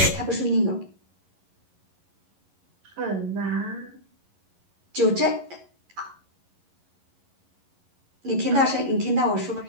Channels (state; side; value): late; left; 11 ms